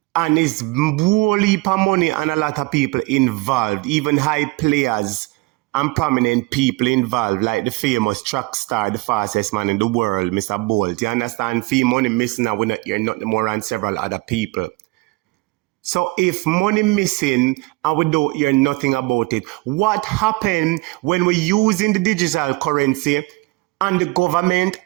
And it's whole heap of money and a lot of people involved, even high players and prominent people involved, like the famous track star, the fastest man in the world, Mr. Bolt. You understand? Fee money missing and we're not here, not more than several other people. So if money missing and we don't hear nothing about it, what happened when we're using the digital currency and the government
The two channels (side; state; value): left; quieter; 23.7 dB